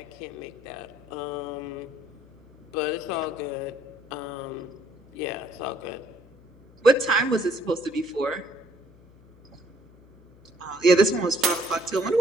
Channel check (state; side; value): noise; left; hum, 25 dB below the sound